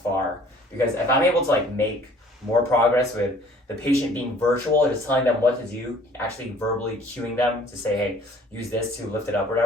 far. Because if I'm able to like make more progress with the patient being virtual, just telling them what to do, actually verbally cueing them to say, hey, use this to lift it up or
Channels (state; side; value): normal; both; correlation 0.54